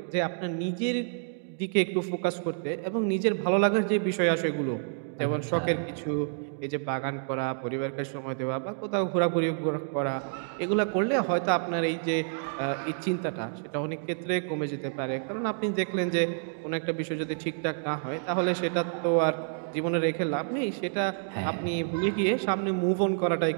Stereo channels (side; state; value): left; silent; digital silence